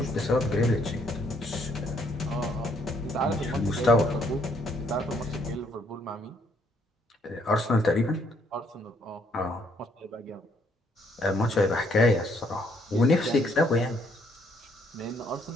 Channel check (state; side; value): normal; both; correlation 0.68